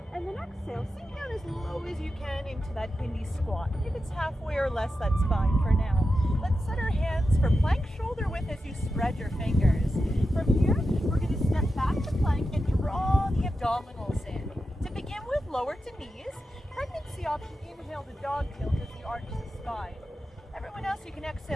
and then exhale, sink down as low as you can into that Hindi squat. If it's halfway or less, that's fine for now. Let's set our hands for plank shoulder width as you spread your fingers. From here, we're going to step back to plank and draw the abdominals in. To begin with, lower to knees. Pregnancy option, inhale to dog tilt as you arch the spine. Everyone else, you can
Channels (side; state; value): both; normal; correlation 0.90